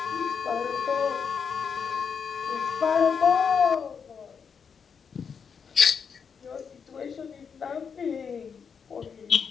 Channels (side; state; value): right; quieter; 6.4 dB